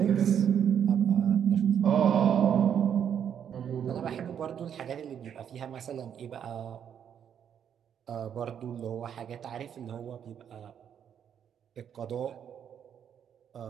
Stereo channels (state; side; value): quieter; left; 8.6 dB